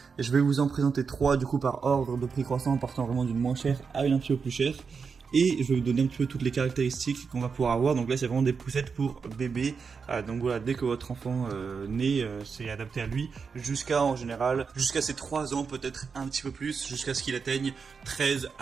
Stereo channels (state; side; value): quieter; left; 5.5 dB